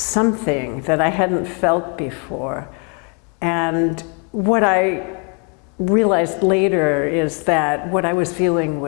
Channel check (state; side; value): quieter; right; 36.7 dB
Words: that I hadn't felt before. And what I realized later is that what I was feeling